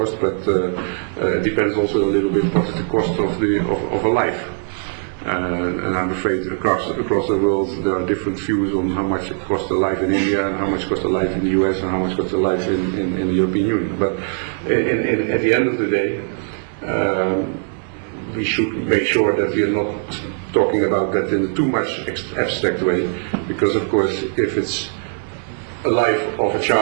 but it depends also a little bit what is the cost of a life. And I'm afraid across the world there are different views on how much it costs a life in India and how much costs a life in the US and how much costs a life in the European Union. But at the end of the day, we should make sure that we are not talking about that in a too much abstract way, because of course if it's a life of a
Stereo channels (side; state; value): left; silent; 59 dB below the other